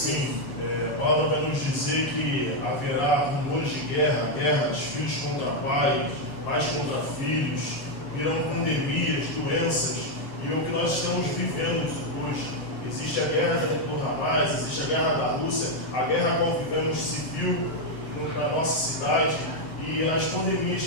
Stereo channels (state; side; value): late; right; 7.6 ms